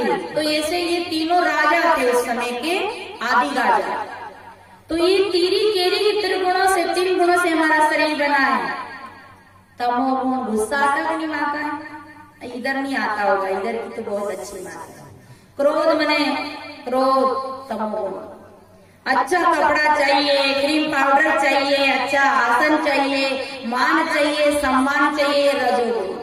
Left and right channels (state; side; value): identical; both; correlation 1.00